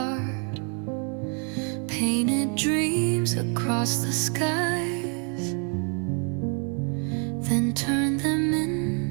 Painted dreams across the skies, then turned them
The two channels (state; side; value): quieter; left; 39.7 dB